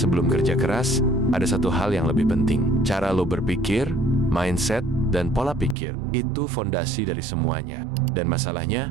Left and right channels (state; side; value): drops out; left; at 5.8 s